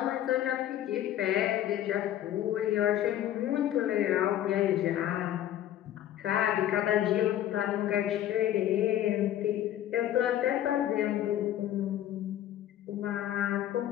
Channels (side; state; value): right; quieter; 12.0 dB